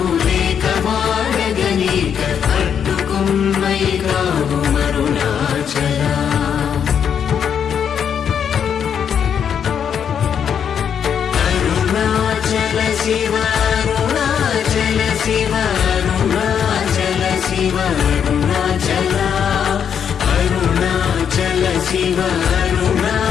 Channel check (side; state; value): right; quieter; 7.9 dB